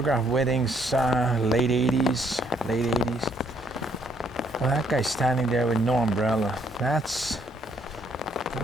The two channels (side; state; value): both; normal; correlation 0.69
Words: weddings, late 80s. Well, that guy's standing there with no umbrella.